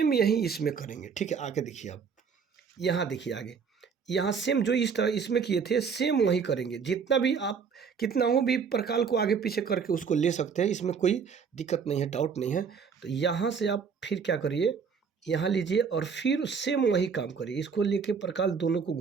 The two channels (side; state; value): left; quieter; 6.1 dB